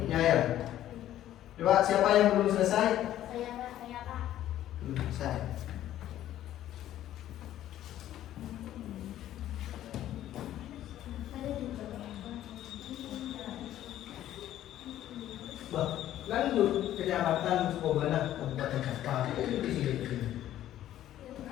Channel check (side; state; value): right; quieter; 12.6 dB